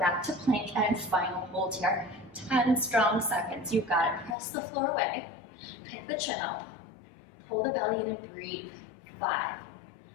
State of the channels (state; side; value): drops out; right; at 4.4 s